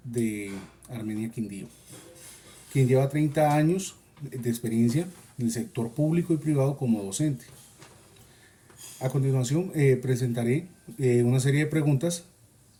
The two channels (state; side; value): identical; both; correlation 1.00